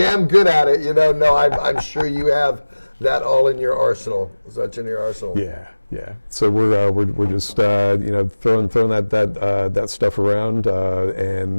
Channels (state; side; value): inverted; both; correlation -1.00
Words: good at it. No, I'm sure you have that all in your arsenal. Such in your arsenal. Yeah. So we're just throwing that stuff around,